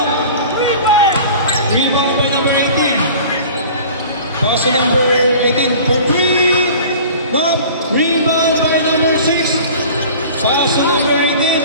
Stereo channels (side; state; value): both; inverted; correlation -0.43